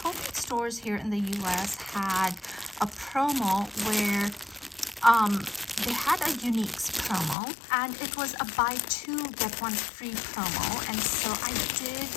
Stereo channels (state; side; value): drops out; right; at 7.4 s